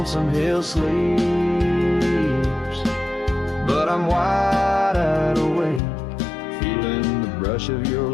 Hill sleeps, but I'm wide awake, feeling the brush of your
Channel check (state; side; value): drops out; right; at 5.8 s